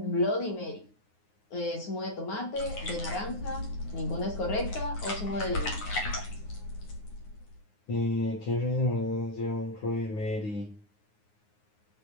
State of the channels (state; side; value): late; right; 9.6 ms